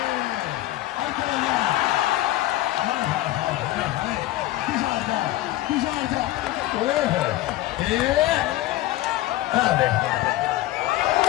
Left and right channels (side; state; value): right; quieter; 16.1 dB